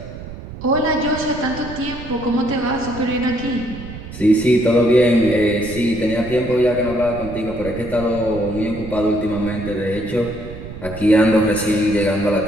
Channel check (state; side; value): noise; right; rumble, 12 dB below the sound